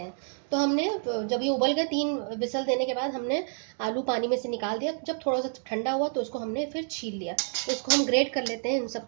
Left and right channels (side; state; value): left; silent; 57 dB below the other